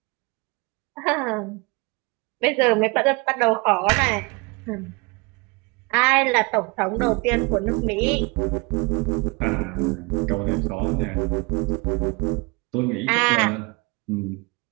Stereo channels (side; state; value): left; quieter; 27.6 dB